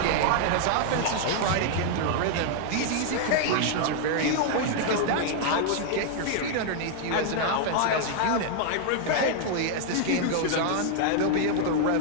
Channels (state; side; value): different; both; correlation 0.00